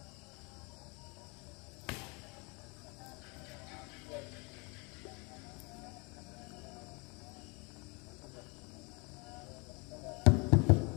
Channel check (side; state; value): right; quieter; 29.7 dB